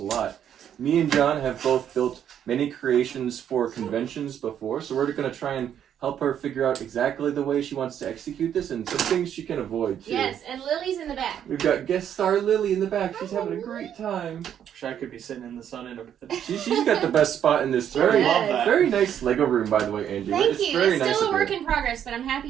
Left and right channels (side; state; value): left; quieter; 9.5 dB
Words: lot. Me and John have both built many creations for conventions before, so we're going to try and help her figure out exactly the way she wants to execute this and some things she can avoid too. Yes, and Lily's in the back. We've got guest star Lily in the back. She's having a great time. Wish I could be sitting in the sun in a... She's got the best spot in this very nice Lego room, by the way, Angie. Thank you. Very It's nice still a work in progress, but I'm